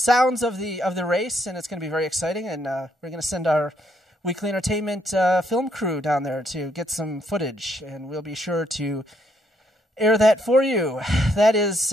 of the race, and it's going to be very exciting. And we're going to send our Weekly Entertainment film crew down there to get some footage, and we'll be sure to air that for you. That is...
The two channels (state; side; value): normal; both; correlation 0.72